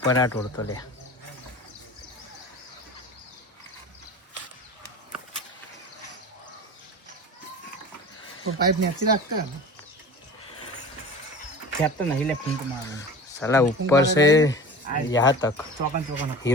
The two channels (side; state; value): both; normal; correlation 0.36